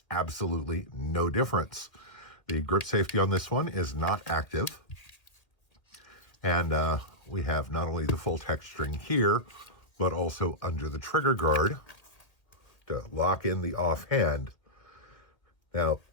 absolutely no difference. The grip safety on this one is not active. And we have not only the full texturing here, but also under the trigger guard to lock in the offhand. Now,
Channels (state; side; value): late; right; 1.8 ms